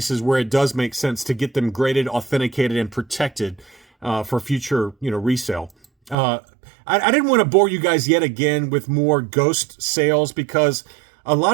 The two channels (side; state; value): left; drops out; at 6.2 s